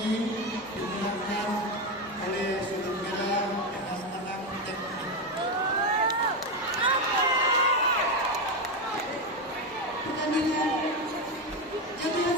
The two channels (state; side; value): normal; both; correlation 0.11